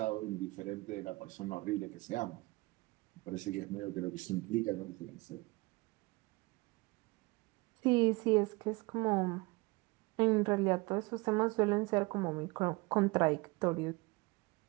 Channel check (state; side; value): quieter; left; 24.1 dB